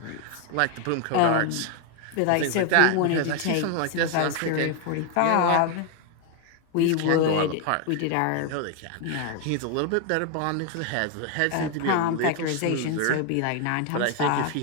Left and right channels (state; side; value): different; both; correlation 0.01